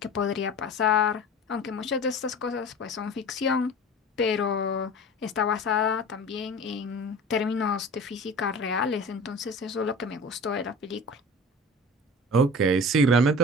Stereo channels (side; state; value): both; normal; correlation 0.38